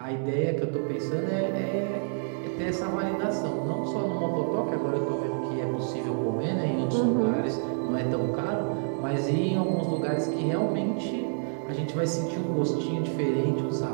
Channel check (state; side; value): silent; left; digital silence